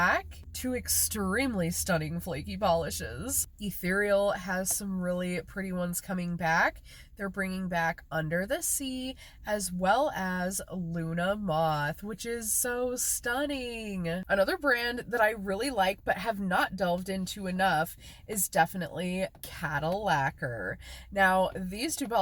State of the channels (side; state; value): both; identical; correlation 1.00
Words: Two extremely stunning flaky polishes. Ethereal has some really pretty ones coming back. They're bringing back Under the Sea, as well as Luna Moth, which is so stunning. Another brand that I really like but have not delved into enough is definitely Cattle Lacquer. Now, these two